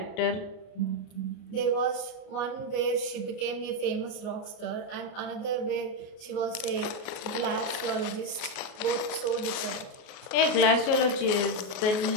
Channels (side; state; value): right; late; 33 ms